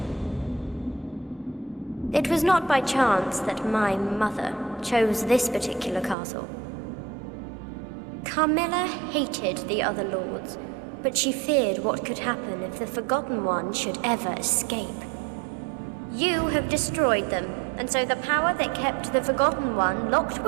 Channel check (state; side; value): drops out; left; at 6.2 s